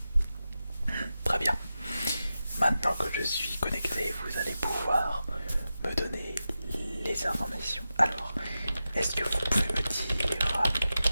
Très bien. Maintenant que je suis connecté, vous allez pouvoir me donner les informations. Alors, est-ce que vous pouvez me dire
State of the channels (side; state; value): both; inverted; correlation -0.92